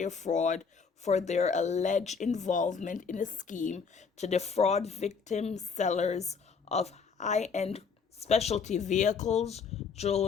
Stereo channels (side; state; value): right; quieter; 5.6 dB